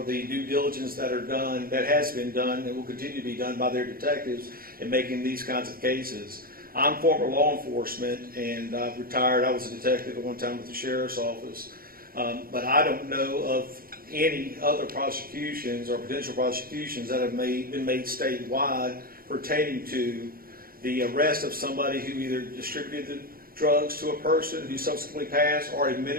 the due diligence that has been done, and will continue to be done by their detectives in making these kinds of cases. I'm former law enforcement, and I've retired. I was a detective at one time with the Sheriff's Office, but I don't know of any other prosecutions or potential prosecutions that have been made statewide pertaining to the arrest of somebody who either distributed the drugs to a person who subsequently passed or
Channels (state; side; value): late; left; 0.42 ms